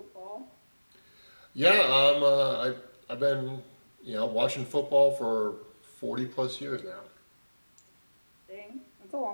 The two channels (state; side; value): inverted; both; correlation -1.00